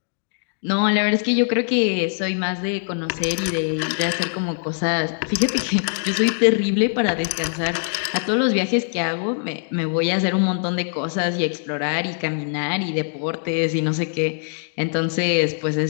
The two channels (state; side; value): silent; right; 63 dB below the other